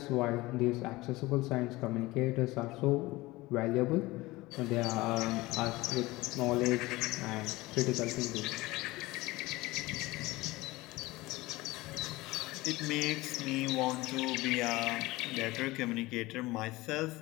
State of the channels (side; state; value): right; quieter; 20.2 dB